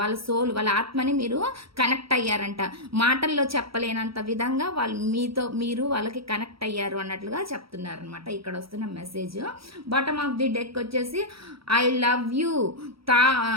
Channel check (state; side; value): late; left; 0.75 ms